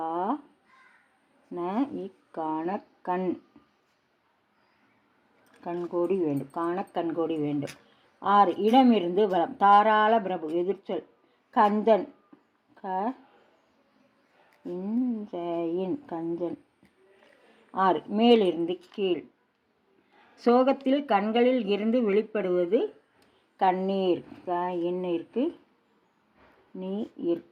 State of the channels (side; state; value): both; identical; correlation 1.00